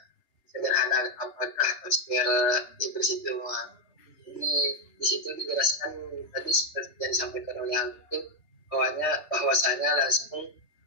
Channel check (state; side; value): late; right; 3.3 ms